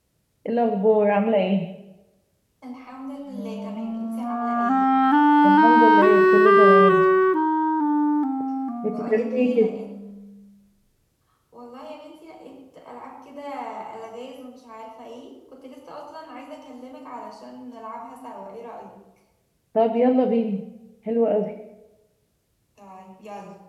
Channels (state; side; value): identical; both; correlation 1.00